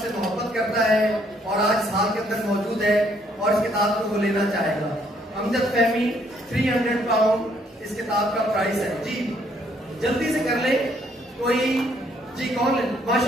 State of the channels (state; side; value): normal; both; correlation 0.68